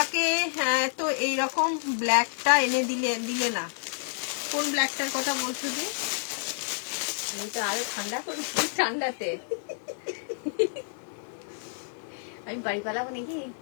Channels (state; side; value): silent; right; digital silence